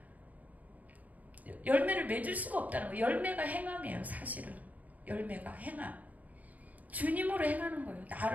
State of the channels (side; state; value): left; late; 0.075 ms